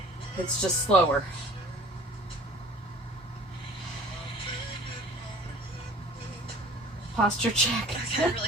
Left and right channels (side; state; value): both; normal; correlation 0.48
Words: It's just slower. Posture check. Okay,